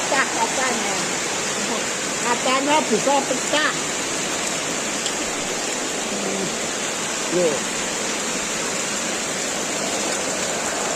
kacanya. Kacanya bisa pecah. Loh.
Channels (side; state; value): both; identical; correlation 1.00